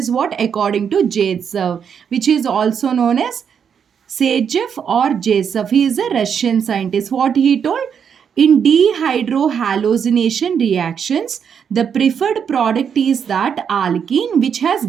what according to Zaitsev, which is also known as Sergeyev or Joseph. He is a Russian scientist. What he told? In dehydrohallucination reactions, the preferred product is that alkene which has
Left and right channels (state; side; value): quieter; left; 7.4 dB